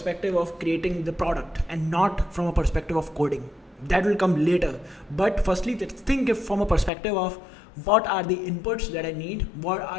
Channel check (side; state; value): right; drops out; at 6.9 s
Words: of creating the product and not from a perspective of coding. That will come later. But firstly, let's think it from a perspective of what are the inputs that I need, what